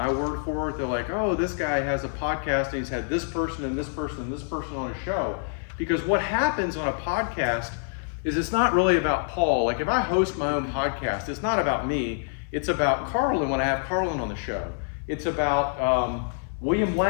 word for it. They're like, oh, this guy has a podcast and he's had this person and this person and this person on a show. Because what happens on a podcast is it's not really about Paul. Like if I host my own podcast, it's not about me. It's about Carlin when I have Carlin on the show. It's about William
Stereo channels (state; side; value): silent; right; digital silence